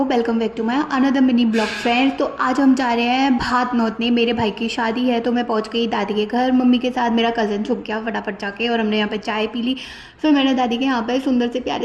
welcome back to my another mini blog friends. तो आज हम जा रहे हैं भात नौतने। मेरे भाई की शादी है तो मैं पहुंच गई दादी के घर मम्मी के साथ। मेरा कज़न छुप गया फटाफट जाके और हमने यहाँ पे चाय पी ली। फिर मैंने दादी के यहाँ पे सुंदर से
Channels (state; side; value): identical; both; correlation 1.00